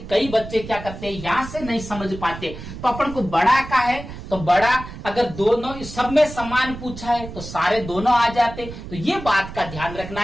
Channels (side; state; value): right; noise; rumble, 12 dB below the sound